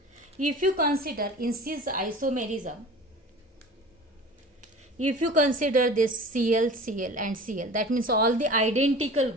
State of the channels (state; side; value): normal; both; correlation 0.39